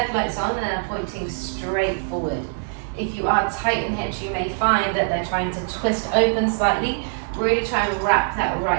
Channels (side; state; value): left; silent; 60 dB below the other